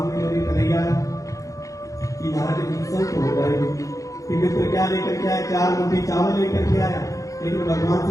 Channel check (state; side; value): late; right; 0.16 ms